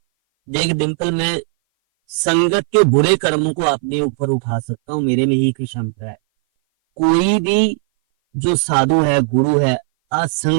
देख डिम्पल, मैं संगत के बुरे कर्मों को अपने ऊपर उठा सकता हूँ, मेरे में ही की क्षमता है। कोई भी जो साधु है, गुरु है,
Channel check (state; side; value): silent; left; 59 dB below the other